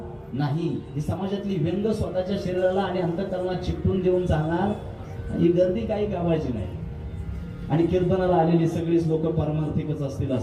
नाही. ही समाजातली व्यंग स्वतःच्या शरीराला आणि अंतःकरणाला चिकटून देऊन चालणार ही गर्दी काही कामाची नाही. आणि कीर्तनाला आलेली सगळीच लोक पारमार्थिकच असतील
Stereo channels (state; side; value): identical; both; correlation 1.00